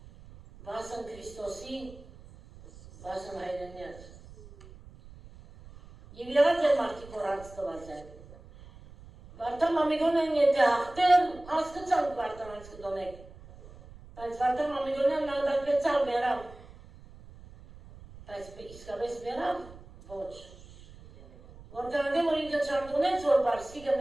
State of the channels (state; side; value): noise; right; rumble, 19 dB below the sound